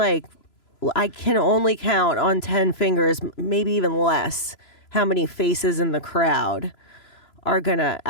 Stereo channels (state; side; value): late; right; 3.0 ms